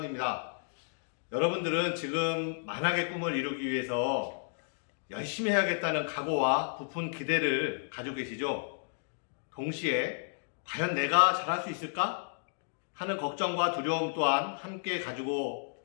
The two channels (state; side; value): silent; right; digital silence